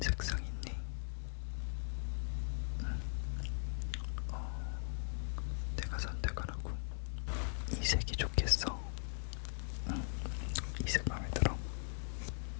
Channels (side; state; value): right; silent; digital silence